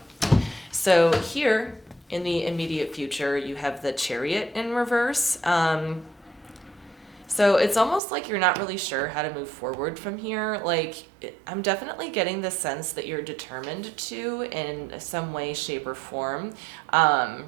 So here in the immediate future, you have the Chariot in reverse. So it's almost like you're not really sure how to move forward from here. Like, I'm definitely getting the sense that you're determined to in some way, shape, or form.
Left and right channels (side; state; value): left; drops out; at 8.0 s